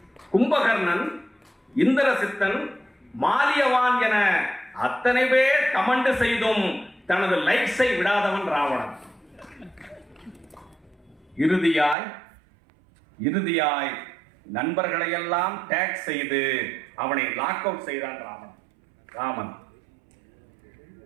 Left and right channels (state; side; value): drops out; left; at 12.0 s